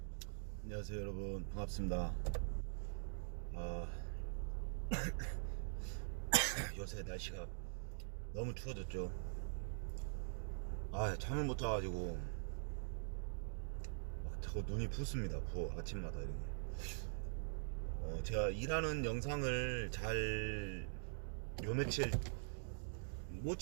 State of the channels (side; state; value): left; silent; digital silence